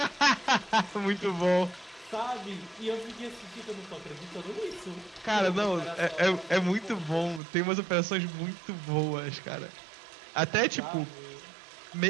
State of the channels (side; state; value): left; drops out; at 7.4 s